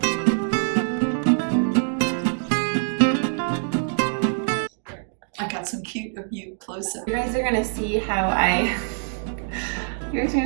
I got some cute of you close up. You guys are gonna see how I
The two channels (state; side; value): silent; left; digital silence